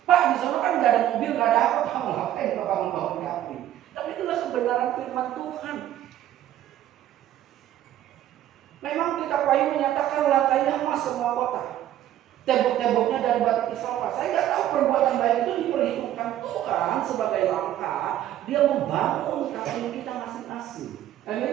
Pak, di sana kan enggak ada mobil, enggak ada apa, Pak, ngapain Bapak membangun kapling? Tapi itulah kebenaran firman Tuhan. Memang kita payu menyatakan lantainya emas semua kota, tembok-temboknya dari batu isopar. Saya nggak tahu perbuatan baik itu diperhitungkan Tuhan sebagai langkah dia membangun kapling kita masing-masing.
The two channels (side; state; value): left; quieter; 12.3 dB